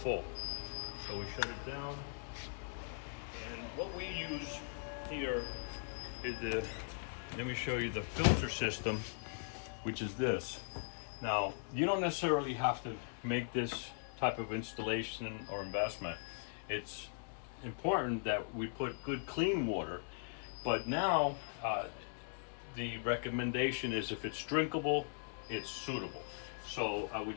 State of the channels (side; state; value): right; silent; 51 dB below the other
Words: So we shut it down. And what we use here is let me show you the filter system, which is this. Now, you don't necessarily have to make this type of installation or investment. It's important that we put good clean water, but now the recommendation is if it's drinkable, it's suitable. So I